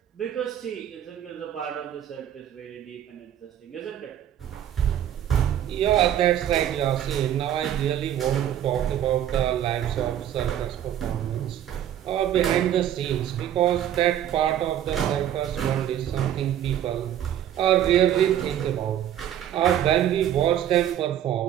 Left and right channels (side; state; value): left; quieter; 10.8 dB